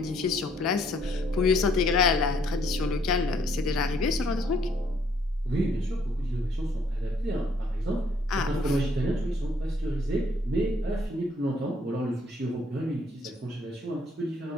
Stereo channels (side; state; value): both; normal; correlation 0.66